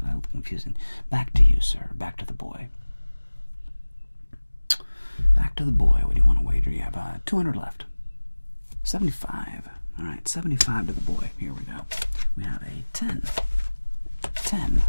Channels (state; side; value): inverted; both; correlation -1.00